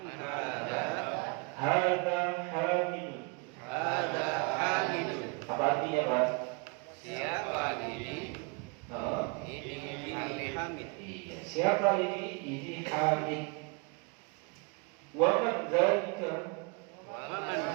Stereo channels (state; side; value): quieter; left; 31.8 dB